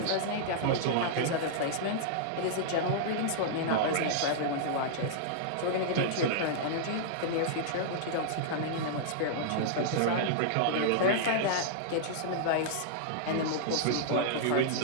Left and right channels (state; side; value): different; both; correlation -0.01